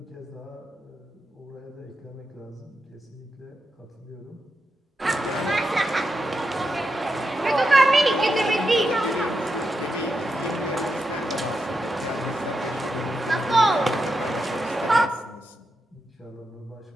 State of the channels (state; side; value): normal; both; correlation 0.86